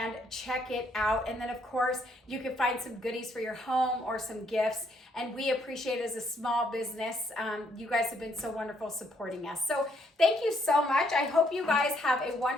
check it out. And then of course you can find some goodies for your home or some gifts, and we appreciate it as a small business. You guys have been so wonderful supporting us. So thank you so much. I hope you guys have a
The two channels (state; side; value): normal; both; correlation 0.71